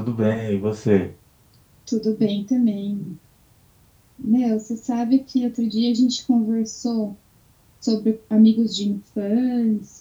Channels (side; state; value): both; identical; correlation 1.00